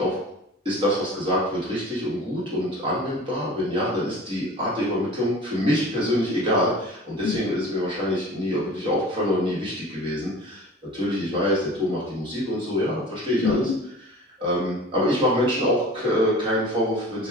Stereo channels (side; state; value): both; normal; correlation 0.41